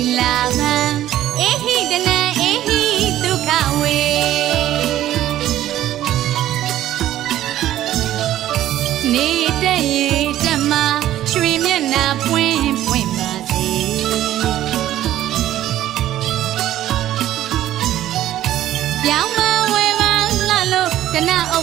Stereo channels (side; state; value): left; quieter; 13.1 dB